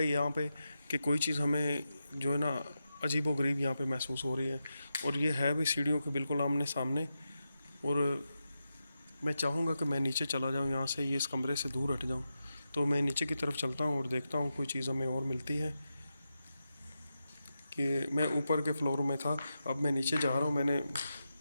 यहाँ पे कि कोई चीज़ हमें जो है ना अजीबो गरीब यहाँ पे महसूस हो रही है। और ये है भी सीढ़ियों के बिल्कुल आमने सामने। और मैं चाहूँगा कि मैं नीचे चला जाऊँ यहाँ से, ये इस कमरे से दूर हट जाऊँ। तो मैं नीचे की तरफ चलता हूँ और देखता हूँ कोई चीज़ हमें और मिलती है। कि मैं ऊपर के फ्लोर में था, अब मैं नीचे जा रहा हूँ। मैंने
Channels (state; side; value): inverted; both; correlation -0.89